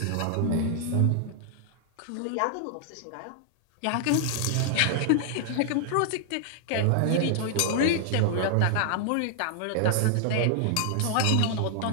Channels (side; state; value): both; different; correlation 0.00